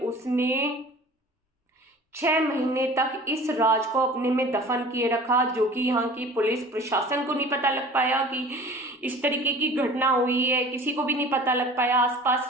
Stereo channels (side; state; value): both; normal; correlation 0.43